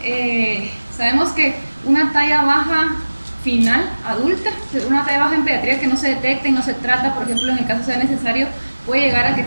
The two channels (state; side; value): inverted; both; correlation -1.00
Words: sabemos que una talla baja final, adulta, una talla baja en pediatría que no se detecta y no se trata, por ejemplo, en el caso sea necesario, puede llegar a que